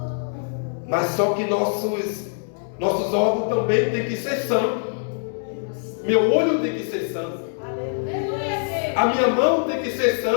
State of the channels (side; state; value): right; silent; digital silence